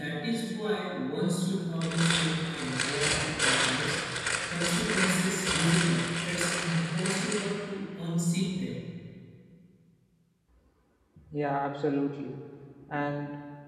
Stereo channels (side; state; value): both; identical; correlation 1.00